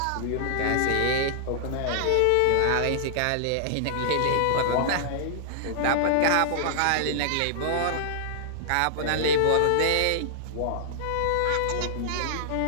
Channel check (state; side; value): different; both; correlation -0.01